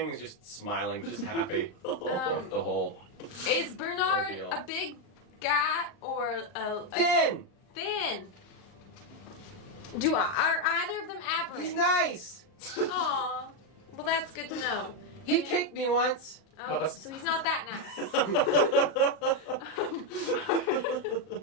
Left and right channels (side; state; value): right; late; 39 ms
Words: is just smiling, just happy. The whole Is Bernard Ordeal. a big guy or a thin. thin? Are either of them aberrant? He's nice. Aw. Well, that's good to know. He kicked me once. Oh, so he's not that nice.